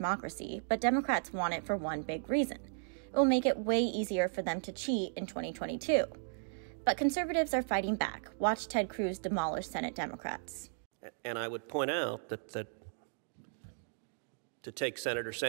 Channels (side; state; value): left; silent; digital silence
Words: but Democrats want it for one big reason. It will make it way easier for them to cheat in 2022. But conservatives are fighting back. Watch Ted Cruz demolish Senate Democrats. And I would point out that to take Senator